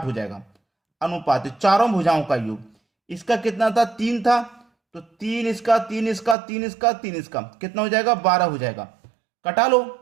हो जाएगा। अनुपात चारों भुजाओं का योग, इसका कितना था, 3 था, तो 3 इसका, 3 इसका, 3 इसका, 3 इसका, कितना हो जाएगा, 12 हो जाएगा। कटा लो,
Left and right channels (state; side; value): drops out; left; at 6.4 s